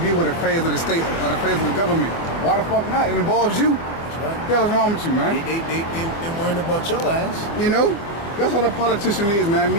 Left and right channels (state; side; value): late; right; 25 ms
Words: with affairs of the state or affairs of the government. Why the fuck not? It involves you. That's right. What the hell is wrong with you, man? They worrying about your ass. You know? That's what a politician is, man. It